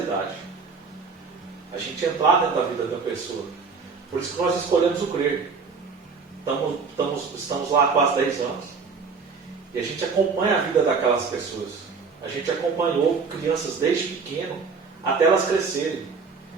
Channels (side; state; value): left; quieter; 5.0 dB